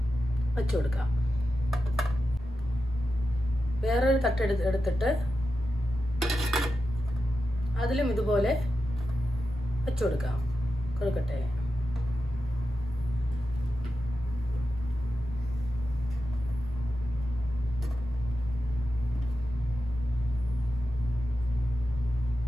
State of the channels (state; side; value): normal; both; correlation 0.91